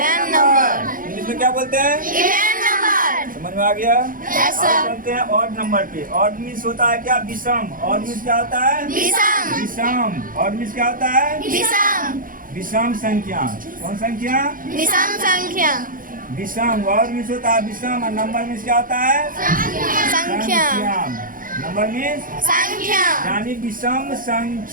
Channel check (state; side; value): late; left; 0.40 ms